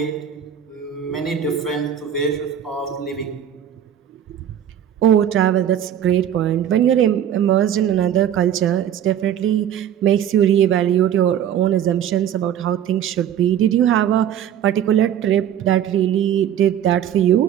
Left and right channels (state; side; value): quieter; left; 9.9 dB